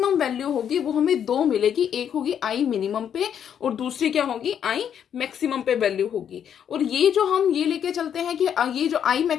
वैल्यू होगी, वो हमें 2 मिलेगी। एक होगी I मिनिमम पे और दूसरी क्या होगी, I मैक्सिमम पे वैल्यू होगी। और ये जो हम ये लेके चलते हैं कि ये जो I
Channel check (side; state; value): right; quieter; 8.8 dB